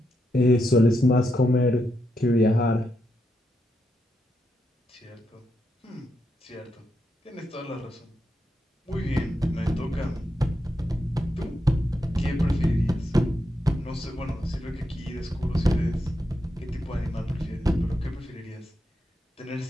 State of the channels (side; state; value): both; normal; correlation 0.84